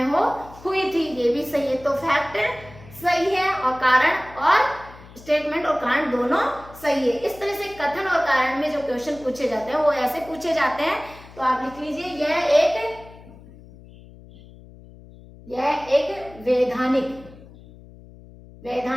हुई थी, ये भी सही है। तो फैक्ट सही है और कारण और स्टेटमेंट और कारण दोनों सही है। इस तरह से कथन और कारण में जो क्वेश्चन पूछे जाते हैं वो ऐसे पूछे जाते हैं। तो आप लिख लीजिए यह एक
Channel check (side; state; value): left; noise; hum, 20 dB below the sound